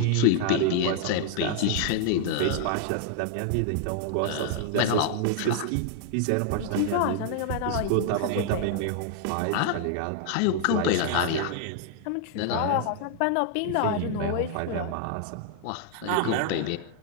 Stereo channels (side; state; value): both; different; correlation 0.00